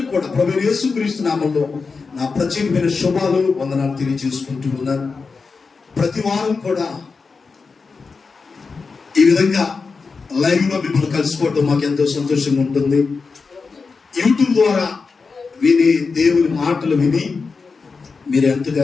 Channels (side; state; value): right; quieter; 4.7 dB